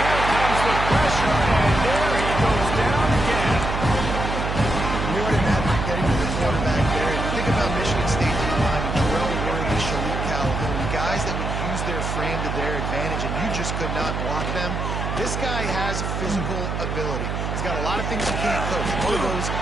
comes the pressure, and there he goes down again. More than that, getting to the quarterback there. Think about Michigan State in the line. Terrell Worthy, Shalik Calhoun, guys that would use their frame to their advantage, and you just could not block them. This guy has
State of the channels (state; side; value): noise; right; hum, 3 dB below the sound